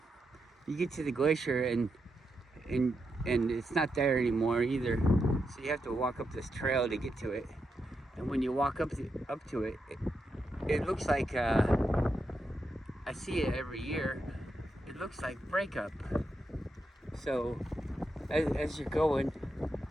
you get to the glacier and it's not there anymore either. So you have to walk up this trail to get to it. And when you walk up to it, it looks like I see it every year. It looks like breakup. So as you're going,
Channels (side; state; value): both; normal; correlation 0.85